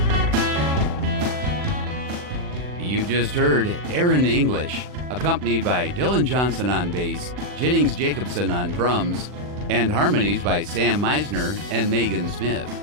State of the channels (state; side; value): late; left; 40 ms